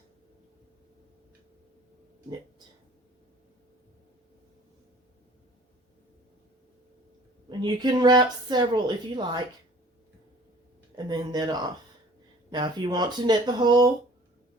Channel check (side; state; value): both; normal; correlation 0.49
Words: knit. And you can wrap several if you like, and then knit off. Now if you want to knit the whole